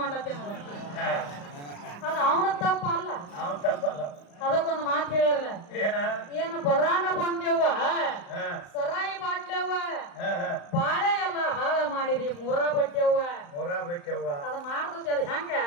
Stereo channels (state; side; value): late; right; 35 ms